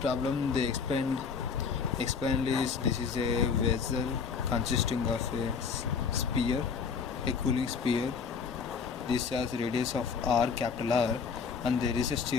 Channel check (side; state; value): right; quieter; 5.8 dB